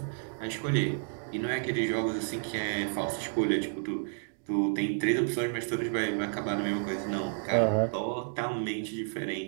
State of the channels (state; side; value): silent; left; 57 dB below the other